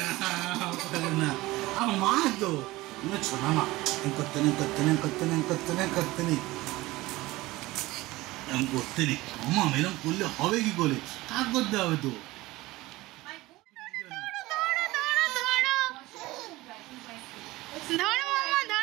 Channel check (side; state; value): left; quieter; 19.4 dB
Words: করে না আমার মা তো ছোনা মা করতে নেই এরকম করতে নেই মামা এরকম করলে হবে কি করে কাজ করতে হবে তো